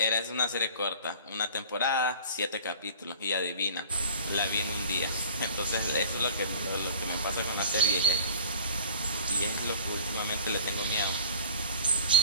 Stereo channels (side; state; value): both; inverted; correlation -0.44